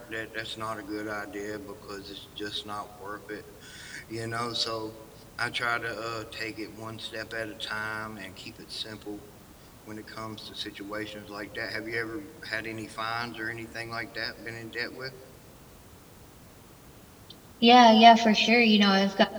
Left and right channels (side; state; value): both; identical; correlation 1.00